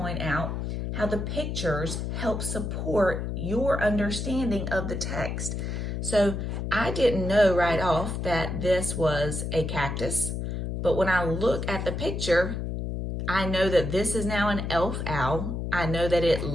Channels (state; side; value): noise; left; hum, 3 dB below the sound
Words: out how the pictures help support your understanding of the text. So I didn't know right off that this was a cactus, but when I look at the picture, I know that this is now an elf owl. I know that it